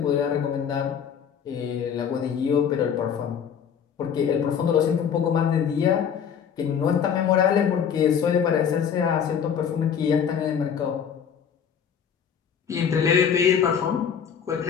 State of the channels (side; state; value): right; quieter; 7.7 dB